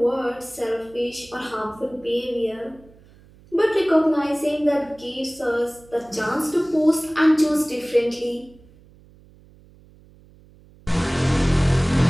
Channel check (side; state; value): right; noise; hum, 26 dB below the sound